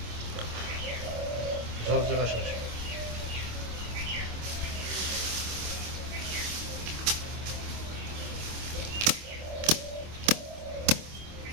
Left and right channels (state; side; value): late; left; 25 ms